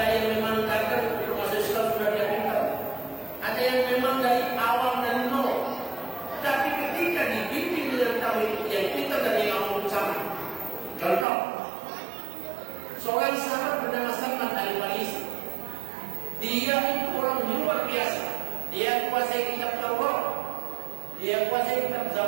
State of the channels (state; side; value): drops out; left; at 11.2 s